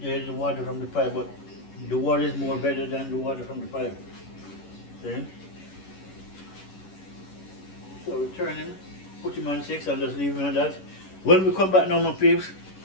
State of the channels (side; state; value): right; late; 11 ms